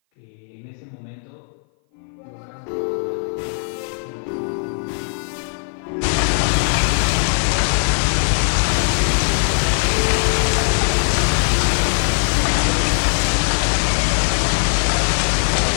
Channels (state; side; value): silent; right; 57 dB below the other